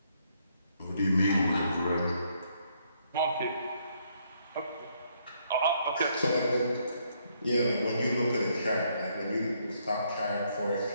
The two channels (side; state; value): both; inverted; correlation -0.72